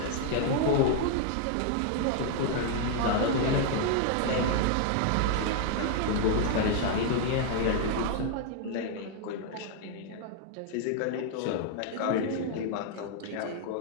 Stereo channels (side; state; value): both; different; correlation 0.00